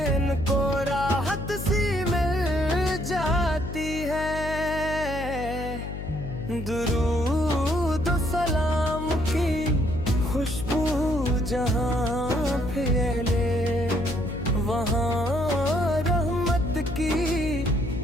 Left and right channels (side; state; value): left; noise; hum, 7 dB below the sound